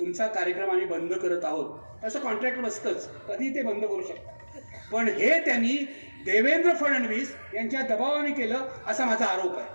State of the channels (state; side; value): inverted; both; correlation -1.00